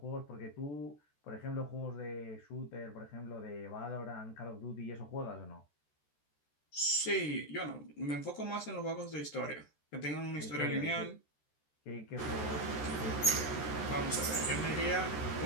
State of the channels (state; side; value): late; right; 14 ms